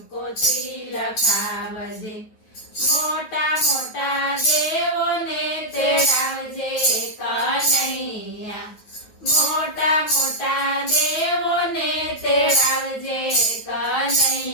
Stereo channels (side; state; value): right; late; 9.3 ms